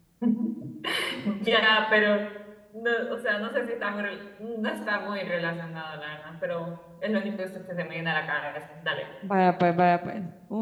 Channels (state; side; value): identical; both; correlation 1.00